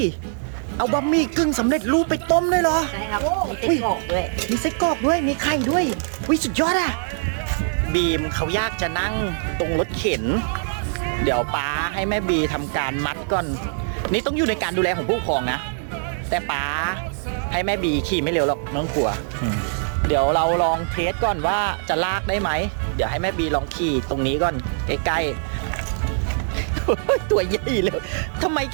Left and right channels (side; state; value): left; silent; digital silence